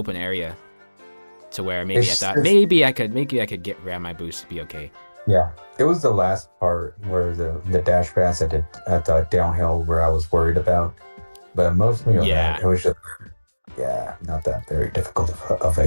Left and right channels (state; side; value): inverted; both; correlation -1.00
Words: area to where maybe I could grab my boost to be okay. Yeah, it was the last part where the dash pass at the downhill where I was worried about, but mostly it was just not that very difficult of